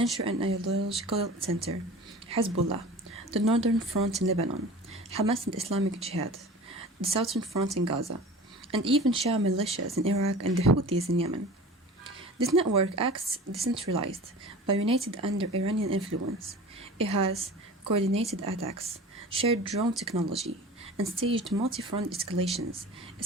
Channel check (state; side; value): normal; both; correlation 0.39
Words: and ideological center, Hezbollah, the northern front in Lebanon, Hamas and Islamic Jihad, the southern front in Gaza, and even Shia militias in Iraq and the Houthis in Yemen. This network acts decentralized, but united under Iranian influence. It has coordinated attacks, shared drone technology, and staged multi-front escalations,